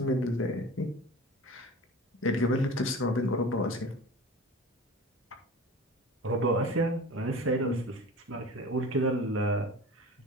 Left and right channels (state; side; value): normal; both; correlation 0.37